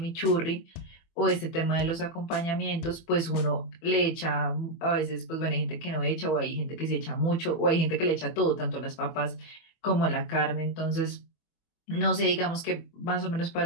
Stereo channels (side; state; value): right; late; 24 ms